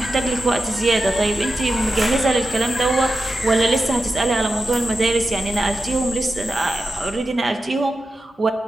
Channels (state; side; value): normal; both; correlation 0.91